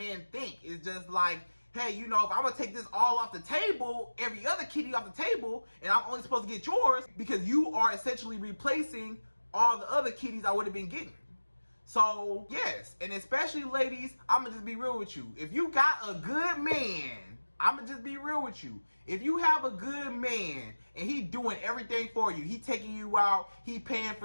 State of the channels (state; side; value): inverted; both; correlation -1.00